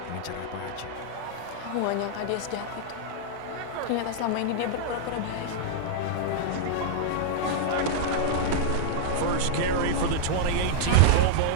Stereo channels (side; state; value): both; different; correlation -0.02